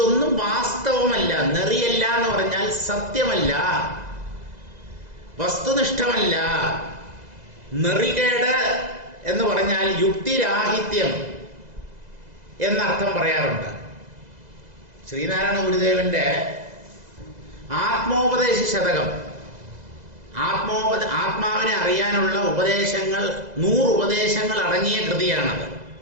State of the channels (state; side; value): late; left; 2.0 ms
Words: വാസ്തവമല്ല. നെറിയല്ല എന്ന് പറഞ്ഞാൽ സത്യമല്ല, വസ്തുനിഷ്ഠമല്ല. നെറികേട് എന്ന് പറഞ്ഞാൽ യുക്തിരാഹിത്യം എന്നർത്ഥം പറയാറുണ്ട്. ശ്രീനാരായണ ഗുരുദേവന്റെ ആത്മോപദേശ ശതകം, ആത്മാവിനെ അറിയാനുള്ള ഉപദേശങ്ങൾ, 100 ഉപദേശങ്ങൾ അടങ്ങിയ കൃതിയാണത്.